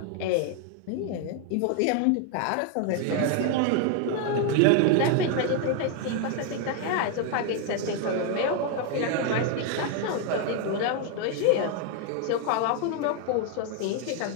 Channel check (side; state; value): both; different; correlation 0.00